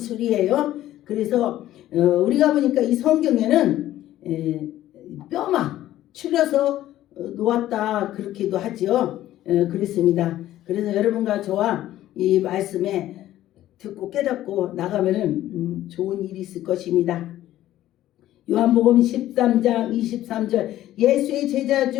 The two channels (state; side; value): quieter; right; 13.8 dB